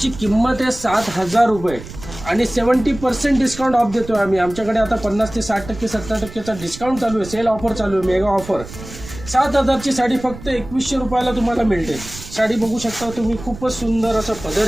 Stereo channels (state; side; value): noise; right; rumble, 14 dB below the sound